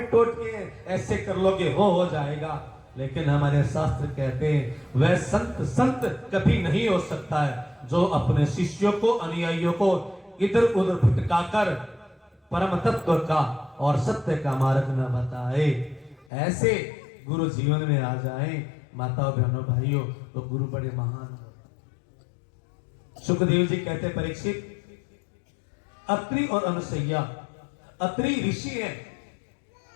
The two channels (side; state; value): right; drops out; at 16.2 s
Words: टोट के ऐसे कर लोगे हो जाएगा। लेकिन हमारे शास्त्र कहते हैं वह संत कभी नहीं हो सकता है जो अपने शिष्यों को, अनुयायियों को इधर उधर भटकाकर परम तत्व का और सत्य का मार्ग न बताए। ऐसे गुरु जीवन में आ जाए माताओं बहनों भाइयों तो गुरु बड़े महान हो। सुखदेव जी कहते परीक्षित, अत्रि और अनुसैया, अत्रि ऋषि है